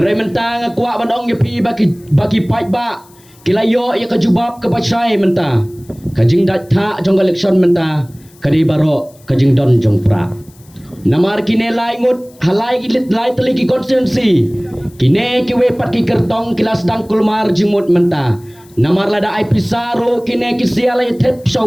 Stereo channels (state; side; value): noise; left; hiss, 28 dB below the sound